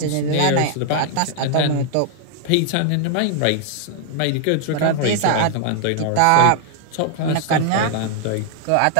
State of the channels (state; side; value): different; both; correlation 0.00